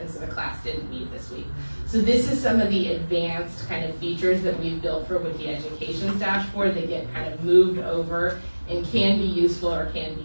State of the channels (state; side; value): inverted; both; correlation -1.00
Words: so the class didn't meet this week. So this is some of the advanced kind of features that we've built for Wiki Education's dashboard that get kind of moved over and can be useful or can be